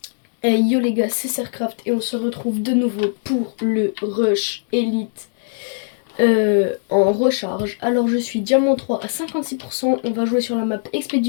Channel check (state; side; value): silent; right; 66 dB below the other